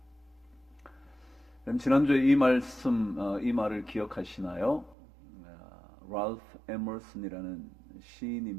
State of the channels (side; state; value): left; drops out; at 5.0 s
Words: 그럼 지난주에 이 말을 기억하시나요? 랄프 에머슨이라는